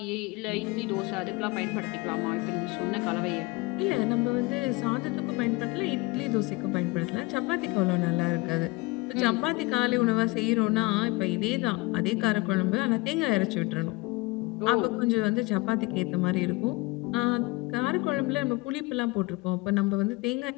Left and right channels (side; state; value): right; quieter; 23.9 dB